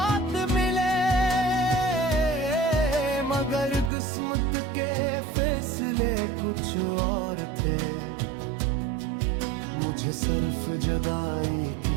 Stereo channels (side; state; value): left; drops out; at 3.9 s